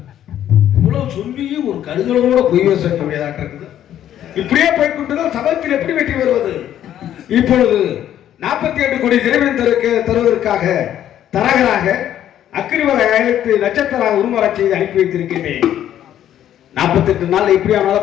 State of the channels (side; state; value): right; quieter; 11.2 dB